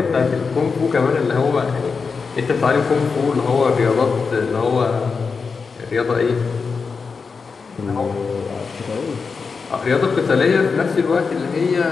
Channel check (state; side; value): quieter; right; 5.0 dB